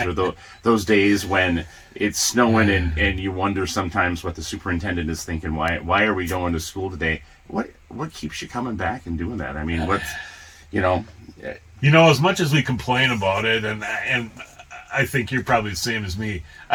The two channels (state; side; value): identical; both; correlation 1.00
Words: or those days when it's snowing and you wonder sometimes what the superintendent is thinking, why are we going to school today? What keeps you coming back and doing that? I mean, as much as we complain about it, and I think you're probably the same as me,